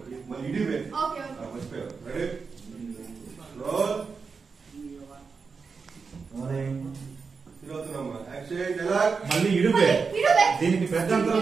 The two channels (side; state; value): left; quieter; 5.1 dB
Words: మళ్ళీ ఇడివే ఓకే ఓకే మర్చిపోయావు. రెడీ రోల్ రోలింగ్ తిరుగుతున్నామ్మా యాక్షన్ డైలాగ్ మళ్ళీ ఇడువే దీనికి పెద్ద